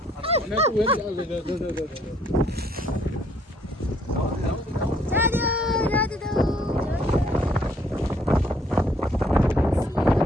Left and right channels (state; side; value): normal; both; correlation 0.65